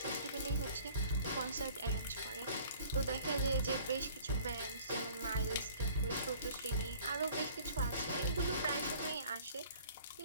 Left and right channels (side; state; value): both; inverted; correlation -0.51